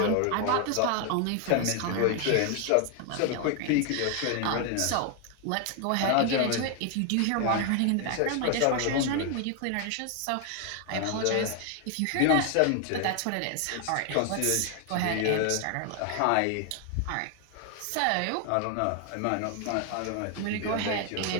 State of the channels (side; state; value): both; different; correlation 0.01